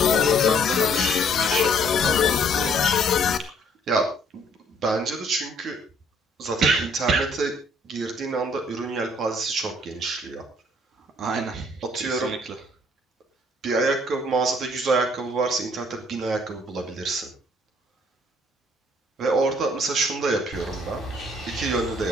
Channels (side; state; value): both; normal; correlation 0.62